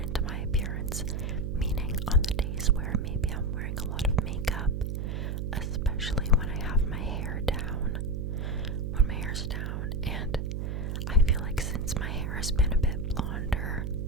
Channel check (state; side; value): noise; right; hum, 2 dB below the sound